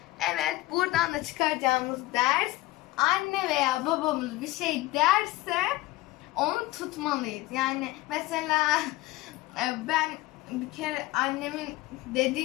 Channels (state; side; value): quieter; right; 18.6 dB